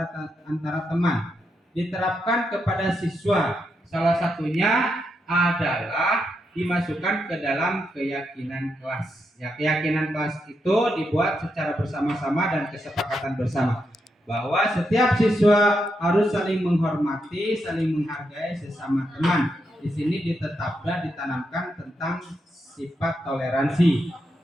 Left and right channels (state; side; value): normal; both; correlation 0.82